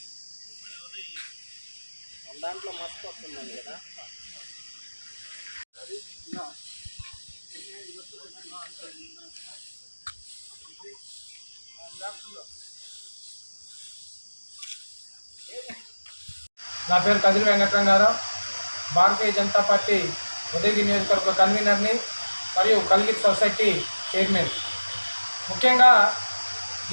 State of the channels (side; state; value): both; inverted; correlation -1.00